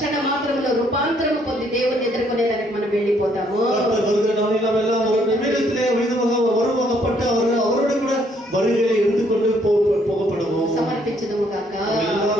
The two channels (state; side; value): normal; both; correlation 0.68